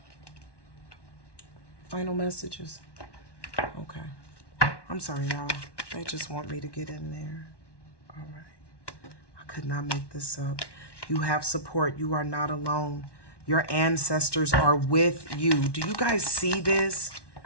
final messages. Okay. I'm sorry, y'all. They just want me to get in there. All right. I could not make this up. You have support. You are not alone. Your ancestors are with you. Do you guys see this?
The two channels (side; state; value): right; late; 1.1 ms